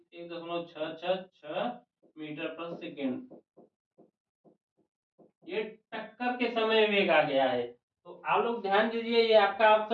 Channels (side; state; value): both; identical; correlation 1.00